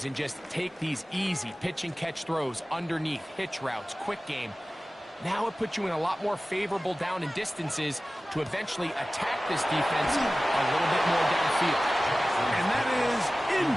and just take these easy pitch and catch throws underneath, hitch routes, quick game, now it puts you in a lot more favorable down and distances to eventually attack this defense a little bit more downfield. And that is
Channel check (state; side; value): normal; both; correlation 0.97